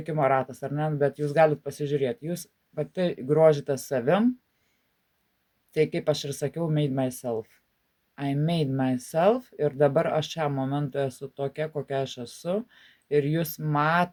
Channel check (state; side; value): identical; both; correlation 1.00